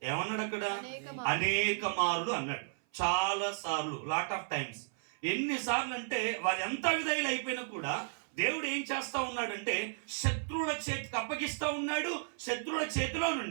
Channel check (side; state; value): left; silent; 55 dB below the other